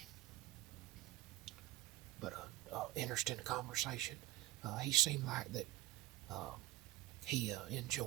But interesting conversation. He seemed like that he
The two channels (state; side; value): quieter; left; 16.8 dB